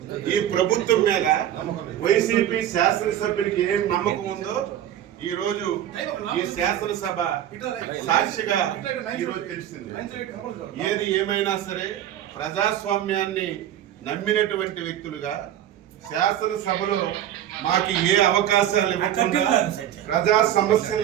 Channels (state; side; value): quieter; left; 11.4 dB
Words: ఈ ప్రభుత్వం మీద వైసీపీ శాసనసభ్యుడికి ఏం నమ్మకం ఉందో ఈ రోజు ఈ శాసనసభ సాక్షిగా ఈరోజు తెలిసింది. ఏది ఏమైనా సరే ప్రజాస్వామ్యాన్ని నమ్మినటువంటి వ్యక్తులుగా శాసనసభలో మాకు ఏ అవకాశాలు ఇవ్వకుండా, ప్రజా